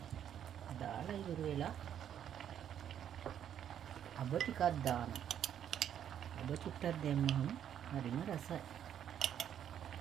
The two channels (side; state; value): left; quieter; 9.6 dB